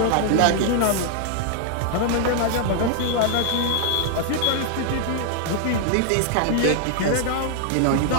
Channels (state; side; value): different; both; correlation 0.00